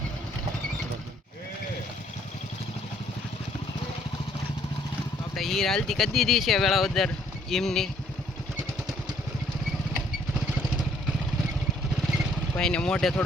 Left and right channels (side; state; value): both; normal; correlation 0.64